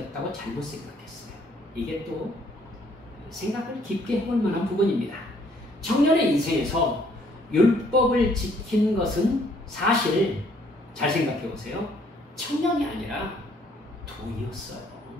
잘못 생각했어요. 이게 또 생각을 깊게 해볼 만한 부분입니다. 청년의 인생에서 율법을 지킨 것은 사실 잘 생각해 보세요. 청년이 아니라 돈이었어요.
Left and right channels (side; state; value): both; normal; correlation 0.64